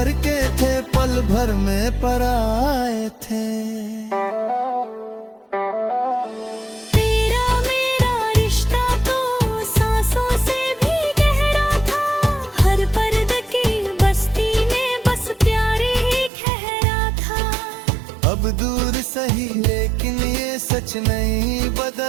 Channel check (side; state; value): left; drops out; at 16.3 s